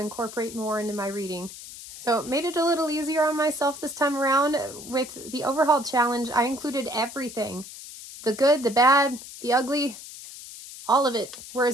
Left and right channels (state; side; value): noise; left; hiss, 14 dB below the sound